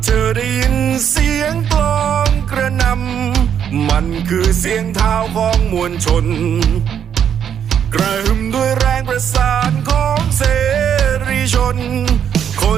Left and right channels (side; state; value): left; quieter; 8.6 dB